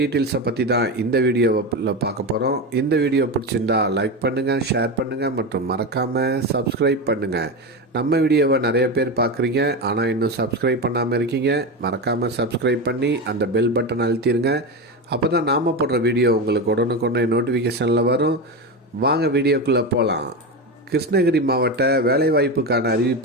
பற்றி தான் இந்த வீடியோவில் பார்க்க போகிறோம். இந்த வீடியோ பிடிச்சிருந்தா லைக் பண்ணுங்கள், ஷேர் பண்ணுங்கள் மற்றும் மறக்காமல் சப்ஸ்கிரைப் பண்ணுங்கள். நம்ம வீடியோவை நிறைய பேர் பார்க்குறீங்க, ஆனால் இன்னும் சப்ஸ்கிரைப் பண்ணாமல் இருக்கீங்க. மறக்காமல் சப்ஸ்கிரைப் பண்ணி அந்த பெல் பட்டன் அழுத்திடுங்க. அப்போ தான் நாம் போடுற வீடியோ உங்களுக்கு உடனுக்குடனே நோட்டிஃபிகேஷனில் வரும். வாங்க வீடியோக்குள்ளே போகலாம். கிருஷ்ணகிரி மாவட்ட வேலைவாய்ப்புக்கான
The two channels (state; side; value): normal; both; correlation 0.18